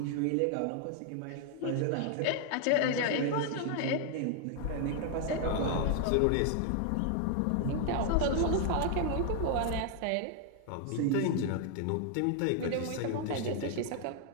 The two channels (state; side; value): different; both; correlation 0.00